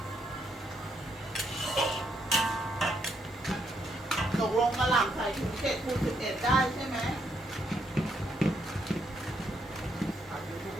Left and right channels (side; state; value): both; normal; correlation 0.75